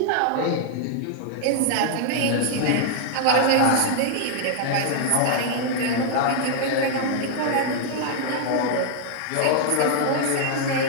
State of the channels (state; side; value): different; both; correlation 0.00